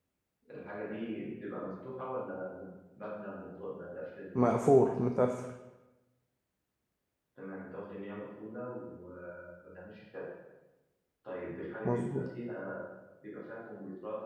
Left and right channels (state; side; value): identical; both; correlation 1.00